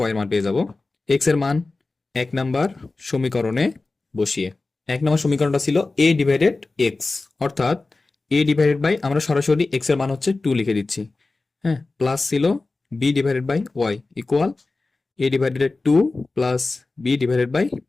এর মান পেয়ে যাব। এক্স এর মান 1 নাম্বার সমীকরণে বসিয়ে, 1 নাম্বার সমীকরণটা ছিল a ডিভাইডেড এক্স, অর্থাৎ a ডিভাইডেড বাই আমরা সরাসরি এক্স এর মান হচ্ছে 2 লিখে দিচ্ছি, হ্যাঁ, প্লাস ছিল b divided by y equal a divided 2 plus b divided by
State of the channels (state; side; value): quieter; right; 3.5 dB